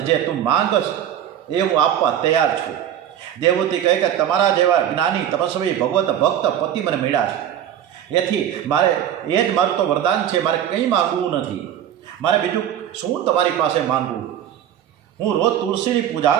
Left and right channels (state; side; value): quieter; left; 10.3 dB